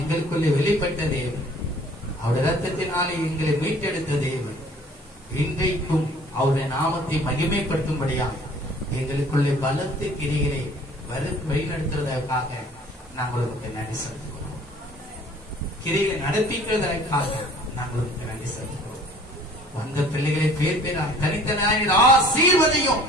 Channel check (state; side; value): normal; both; correlation 0.52